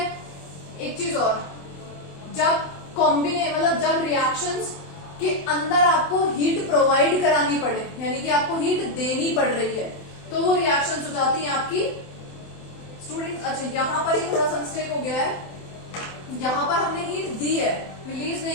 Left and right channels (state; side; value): late; right; 27 ms